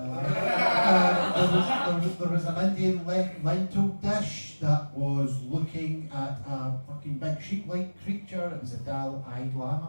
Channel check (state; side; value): inverted; both; correlation -1.00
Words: Lama. There was an Indian lentil dish that was looking at a fucking big sheep-like creature. It was a dull-eyed